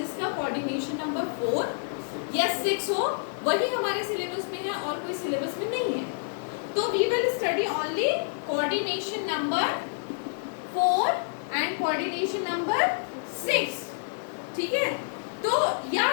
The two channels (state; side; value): silent; right; digital silence